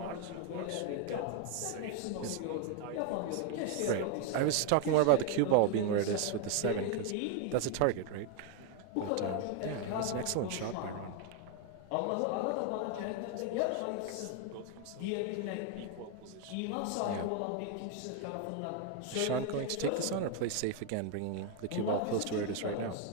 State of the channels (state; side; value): different; both; correlation 0.01